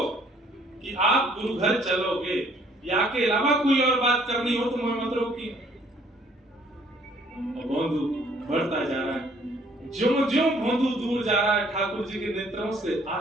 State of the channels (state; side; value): normal; both; correlation 0.61